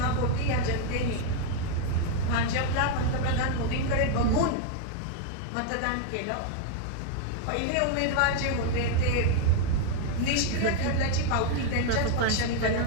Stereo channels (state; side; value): different; both; correlation 0.00